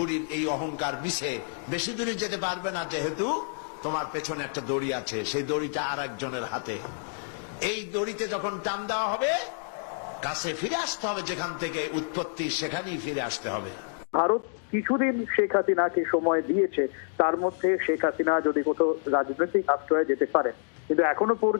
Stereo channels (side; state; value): right; silent; digital silence